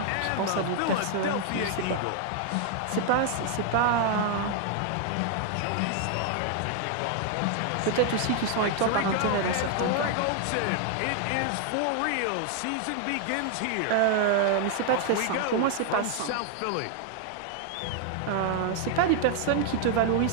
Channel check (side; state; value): both; different; correlation 0.00